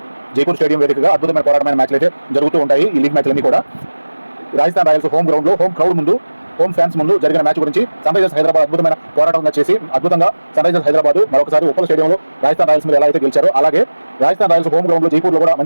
స్టేడియం వేదికగా అద్భుతమైన పోరాటమైన మ్యాచ్లు అయితే జరుగుతూ ఉంటాయి. ఈ లీగ్ మ్యాచ్లన్నీ కూడా రాజస్థాన్ రాయల్స్ హోమ్ గ్రౌండ్లో హోమ్ క్రౌడ్ ముందు హోమ్ ఫ్యాన్స్ ముందు జరిగిన మ్యాచ్ గురించి సన్ రైజర్స్ హైదరాబాద్ అద్భుతమైన పోరాటంగా చేసి అద్భుతంగా సన్ రైజర్స్ హైదరాబాద్ మరొకసారి ఉప్పల్ స్టేడియంలో రాజస్థాన్ రాయల్స్ మీద ఎలా అయితే గెలిచారో అలాగే రాజస్థాన్ రాయల్స్ హోమ్ గ్రౌండ్ లో జైపూర్లో కూడా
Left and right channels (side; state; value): both; inverted; correlation -1.00